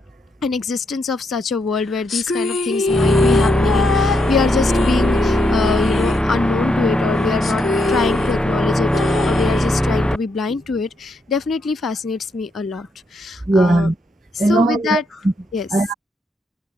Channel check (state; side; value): normal; both; correlation 0.79